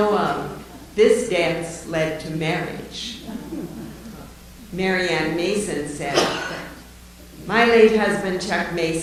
of, this dance led to marriage. Marianne Mason said, "My late husband, Chuck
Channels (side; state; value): both; identical; correlation 1.00